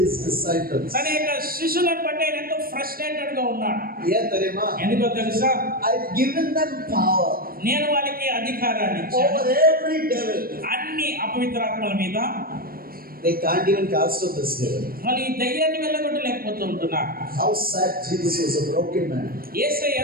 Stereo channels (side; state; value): left; late; 0.43 ms